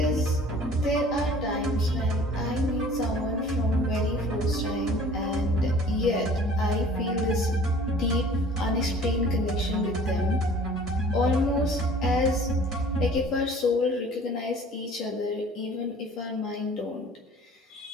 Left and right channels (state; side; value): normal; both; correlation 0.49